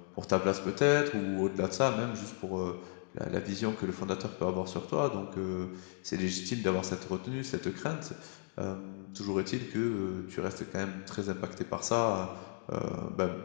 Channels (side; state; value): right; silent; 54 dB below the other